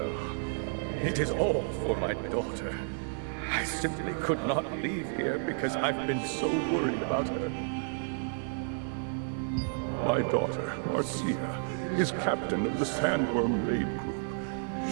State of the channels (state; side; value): silent; left; digital silence